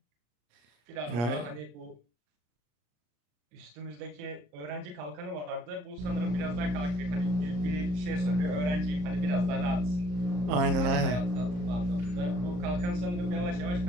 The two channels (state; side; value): late; left; 34 ms